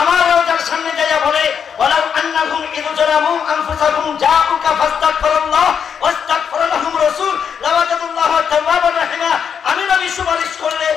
আমার রওজার সামনে যাইয়া বলে ওয়ালাউ আন্নাহুম ইয জালামু আনফুসাহুম জাউকা ফাস্তাগফিরুল্লাহ ওয়াস্তাগফার লাহুম রাসূল লাওয়াজাদুল্লাহ তাওয়াবার রাহিমা, আমি নবী সুপারিশ করলে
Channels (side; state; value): right; quieter; 7.3 dB